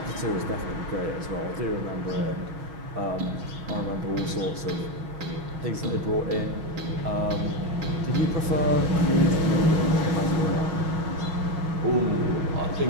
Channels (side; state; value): left; late; 6.2 ms